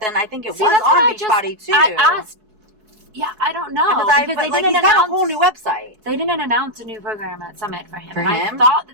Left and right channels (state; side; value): late; left; 4.7 ms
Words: I think it was on Beachbody too. I asked. Yeah, I don't know. Because they didn't announce a whole new website. They didn't announce a new program at Summit for him. For him? I thought